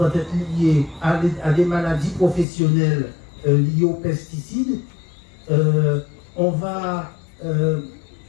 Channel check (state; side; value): drops out; right; at 2.5 s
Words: être liée à des maladies professionnelles liées aux pesticides. On va